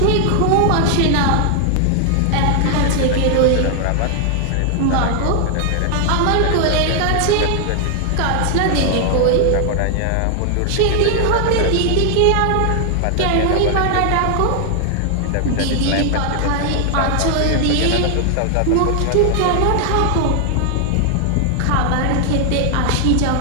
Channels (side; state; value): both; different; correlation 0.00